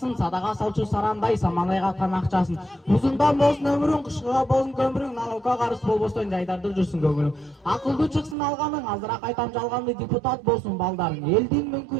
садага салчу сарандай самалай каткан акчасын. Узундан болсун өмүрүң, кышкыга болсун көмүрүң, налогко карыз болбостон жайдарды жүрсүн көңүлүң. Акылдуу чыксын алганың, азыраак айтам жалганды депутат болсун балдарың. Элдин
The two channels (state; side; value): drops out; left; at 8.3 s